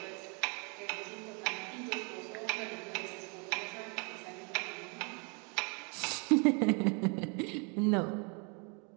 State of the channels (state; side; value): quieter; left; 34.5 dB